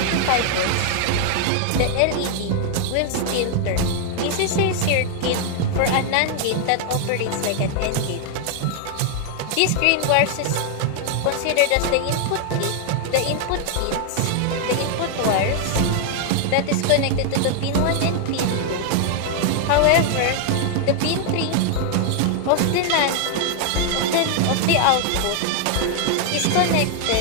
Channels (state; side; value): different; both; correlation 0.00